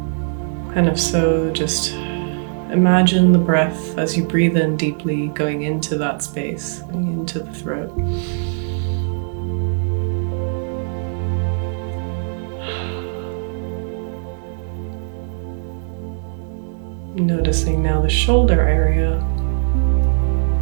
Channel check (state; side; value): silent; left; digital silence